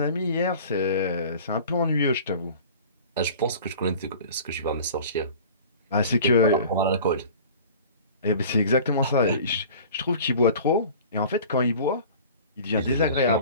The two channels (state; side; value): inverted; both; correlation -0.43